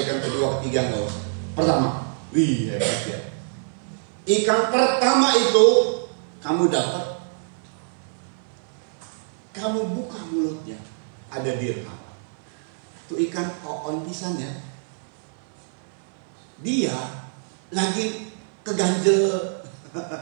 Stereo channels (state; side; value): silent; left; 59 dB below the other